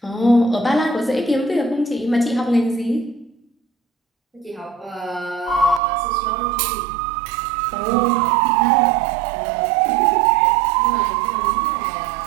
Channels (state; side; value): drops out; left; at 5.8 s